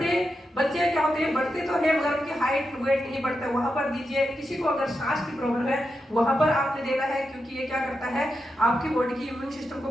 बच्चे क्या होते हैं, बढ़ते तो है मगर उनकी हाइट वेट नहीं बढ़ता, वहां पर दीजिए। किसी को अगर सांस की प्रॉब्लम है वहां पर आपने देना है, क्योंकि ये क्या करता है आपकी बॉडी की इम्यून सिस्टम को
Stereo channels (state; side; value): normal; both; correlation 0.87